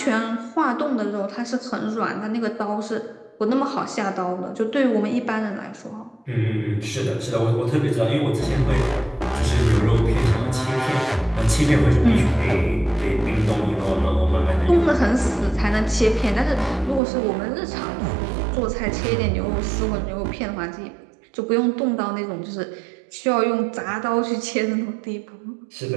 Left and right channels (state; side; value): drops out; left; at 17.0 s